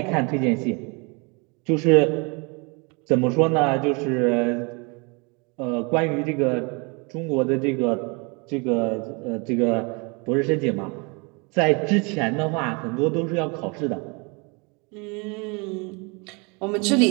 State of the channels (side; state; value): left; quieter; 30.8 dB